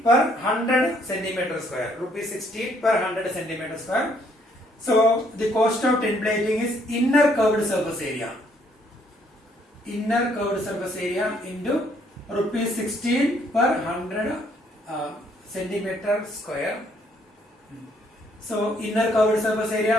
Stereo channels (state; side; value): normal; both; correlation 0.67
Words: per 100 centimeter square. Rupees 16 per 100 centimeter square. So the cost of tin plating is inner curved surface area. Inner curved surface area into rupees 16 per 100 centimeter square. So inner curved surface